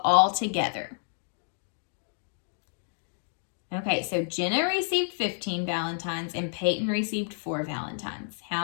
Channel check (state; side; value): silent; right; digital silence